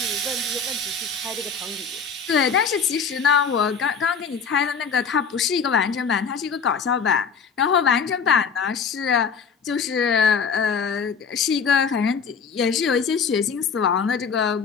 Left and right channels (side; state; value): right; quieter; 5.9 dB